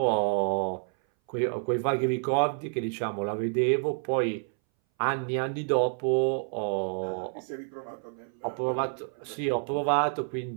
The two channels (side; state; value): left; silent; 59 dB below the other